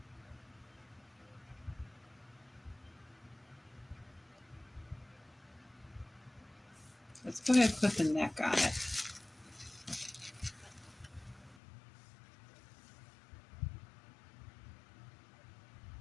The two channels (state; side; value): drops out; right; at 11.6 s